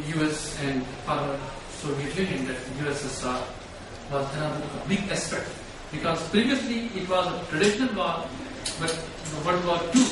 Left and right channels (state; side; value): identical; both; correlation 1.00